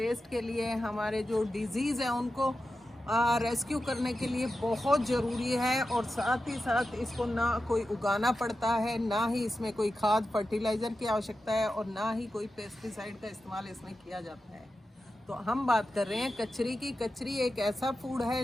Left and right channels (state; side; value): normal; both; correlation 0.91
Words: के लिए, हमारे जो डिजीज़ हैं उनको रेस्क्यू करने के लिए बहुत ज़रूरी है। और साथ ही साथ इसको ना कोई उगाना पड़ता है, ना ही इसमें कोई खाद फर्टिलाइज़र की आवश्यकता है और ना ही कोई पेस्टिसाइड का इस्तेमाल इसमें किया जाता है। तो हम बात कर रहे हैं कचरी की। कचरी एक ऐसा फूड है